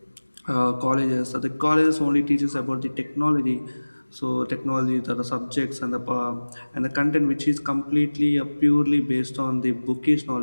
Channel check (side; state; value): both; inverted; correlation -1.00